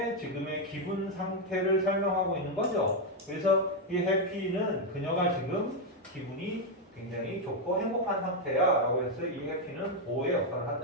지금의 기분 상태를 설명하고 있는 거죠. 그래서 이 happy는 그녀가 지금 기분이 굉장히 좋고 행복한 상태야 라고 해서 이 해피는 보호의 역할을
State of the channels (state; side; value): normal; both; correlation 0.02